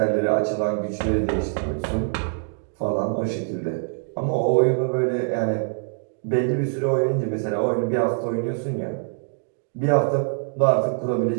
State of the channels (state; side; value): silent; left; 63 dB below the other